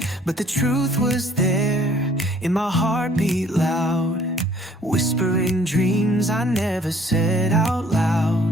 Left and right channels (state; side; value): normal; both; correlation 0.58